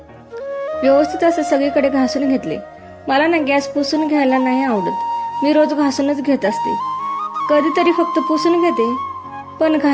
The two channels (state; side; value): identical; both; correlation 1.00